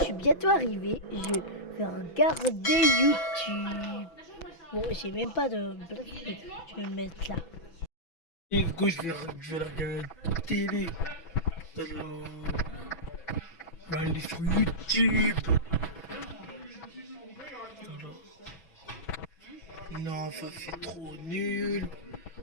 suis bientôt arrivé, je vais regarder YouTube. Bon, j'ai même pas de blague, je vais me mettre là. Et du coup, je vais regarder la télé. Alors, je vais aller sur YouTube. Alors, non, ça c'est trop nul.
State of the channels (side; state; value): right; late; 6.0 ms